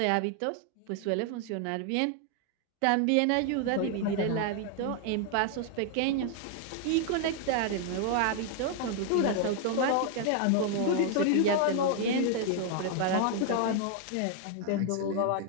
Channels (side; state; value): both; different; correlation 0.00